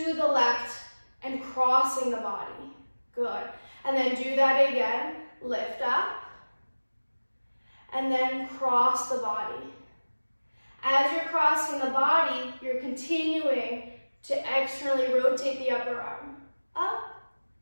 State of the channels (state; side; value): inverted; both; correlation -1.00